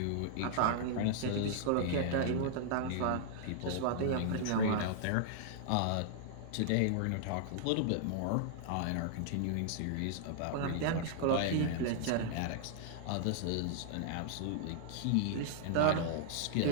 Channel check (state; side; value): different; both; correlation -0.01